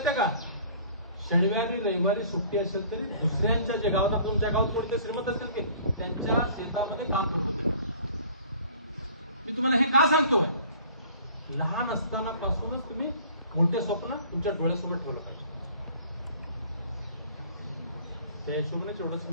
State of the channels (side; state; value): both; inverted; correlation -0.51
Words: आहे का? शनिवारी रविवारी सुट्टी असेल तरी दुसऱ्यांच्या जे गावात, तुमच्या गावात कोणते श्रीमंत असेल की त्यांच्या शेतामध्ये काम करत होते. मी तुम्हाला हे का सांगतोय? लहान असताना पासूनच तुम्ही मोठे स्वप्न तुमच्या डोळ्यासमोर ठेवलं पाहिजे. त्या हिशोबाने एवढंच